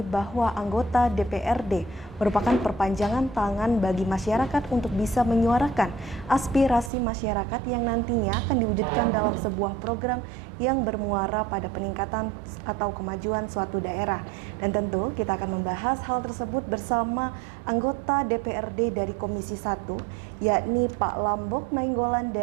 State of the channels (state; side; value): drops out; left; at 6.9 s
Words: bahwa anggota DPRD merupakan perpanjangan tangan bagi masyarakat untuk bisa menyuarakan aspirasi masyarakat yang nantinya akan diwujudkan dalam sebuah program yang bermuara pada peningkatan atau kemajuan suatu daerah. Dan tentu kita akan membahas hal tersebut bersama anggota DPRD dari Komisi 1, yakni Pak Lambok Nainggolan